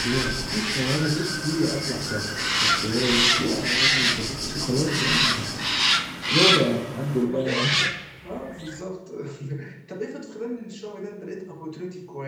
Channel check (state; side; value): identical; both; correlation 1.00